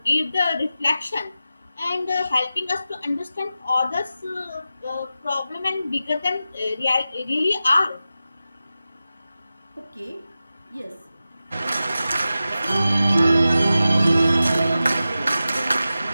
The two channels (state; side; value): inverted; both; correlation -0.93